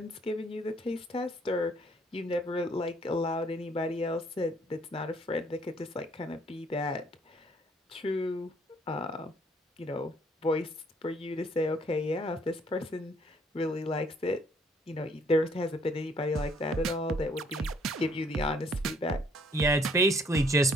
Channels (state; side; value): normal; both; correlation 0.63